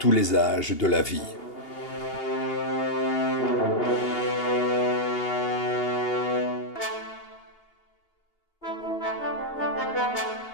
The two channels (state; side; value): late; right; 2.8 ms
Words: les âges de la vie.